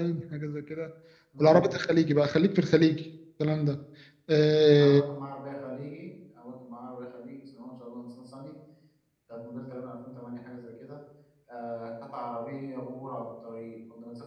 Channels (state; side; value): identical; both; correlation 1.00